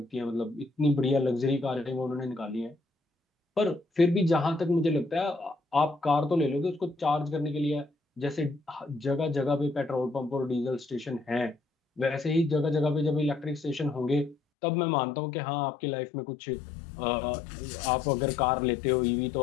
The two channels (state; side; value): drops out; right; at 14.4 s